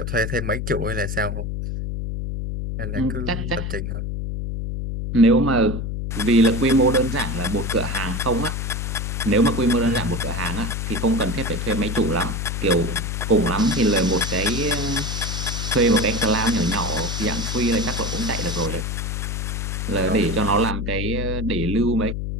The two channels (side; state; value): left; noise; hum, 3 dB below the sound